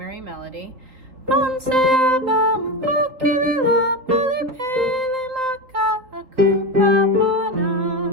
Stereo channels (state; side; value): late; left; 3.8 ms